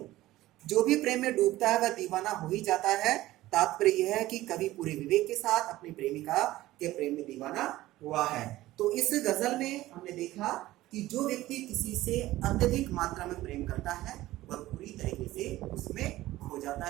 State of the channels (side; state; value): left; quieter; 16.4 dB